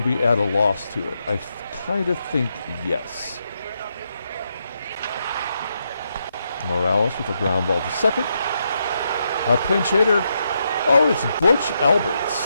we add a loss to it? I kind of think yes. Morales with a ground ball to second. A pinch hitter. Oh, it's Butch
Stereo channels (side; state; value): both; inverted; correlation -0.81